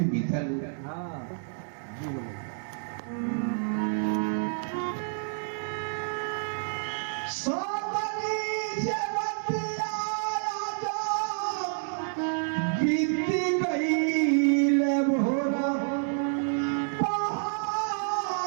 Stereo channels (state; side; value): silent; left; 59 dB below the other